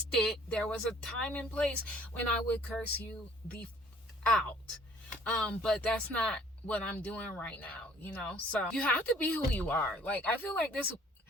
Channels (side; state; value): both; normal; correlation 0.56